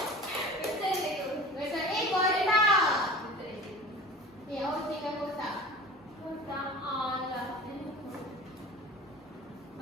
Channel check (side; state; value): both; normal; correlation 0.39